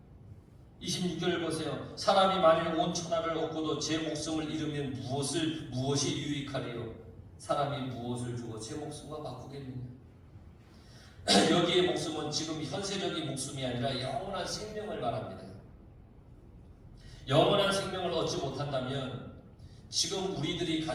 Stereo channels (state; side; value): identical; both; correlation 1.00